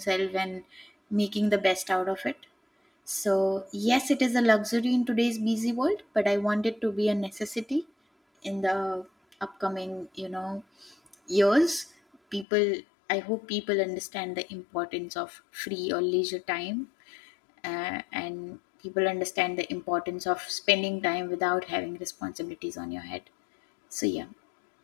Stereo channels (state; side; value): drops out; right; at 12.5 s